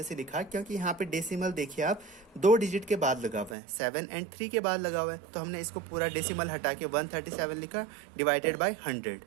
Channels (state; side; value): drops out; left; at 3.6 s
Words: से लिखा क्योंकि यहाँ पे डेसिमल देखिए आप 2 डिजिट के बाद लगा हुआ है, 7 and 3 के बाद लगा हुआ है, तो हमने इसको पूरा डेसिमल हटा के 137 लिखा डिवाइडेड बाय 100.